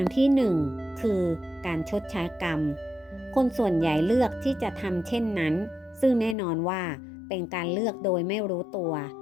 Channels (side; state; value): right; drops out; at 6.4 s